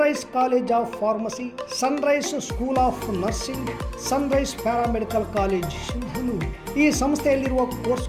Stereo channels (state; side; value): identical; both; correlation 1.00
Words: college of pharmacy, sunrise school of nursing, sunrise paramedical college Sindhanur. ಈ ಸಂಸ್ಥೆಯಲ್ಲಿರುವ